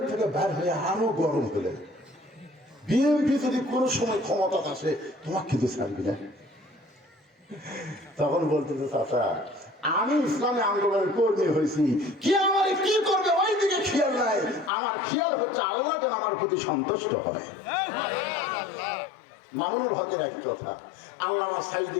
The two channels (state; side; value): drops out; right; at 14.7 s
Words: থেকে বের হয়ে আরো গরম হলে বিএনপি যদি কোনো সময় ক্ষমতা আসে তোমাকে কিন্তু ছাড়বি না। তখন বলতেছে, চাচা আমি ইসলামী আন্দোলনের কর্মী হয়েছি, কি আমার কি করবে ওই দিকে খেয়াল নাই, আমার খেয়াল হচ্ছে আল্লাহ যেন আমার প্রতি সন্তুষ্ট হয়। মামুনুল হকের একই কথা, আল্লাহ